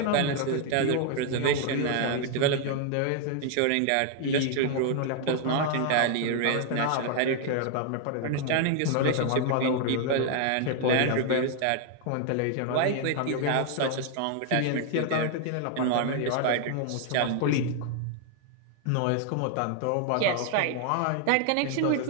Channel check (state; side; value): different; both; correlation 0.00